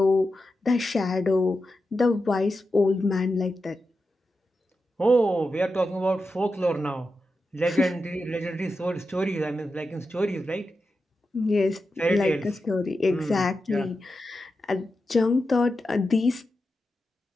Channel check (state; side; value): normal; both; correlation 0.90